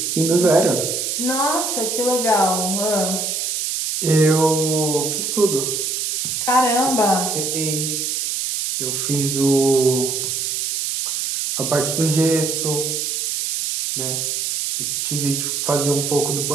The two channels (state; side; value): noise; right; hiss, 1 dB below the sound